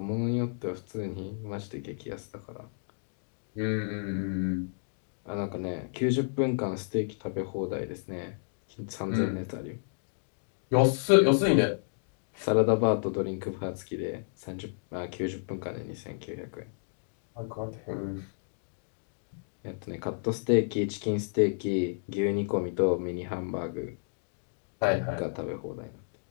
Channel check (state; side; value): silent; right; digital silence